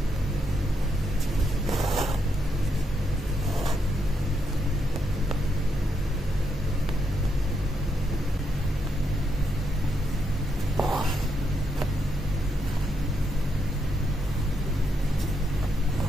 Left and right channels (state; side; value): normal; both; correlation 0.80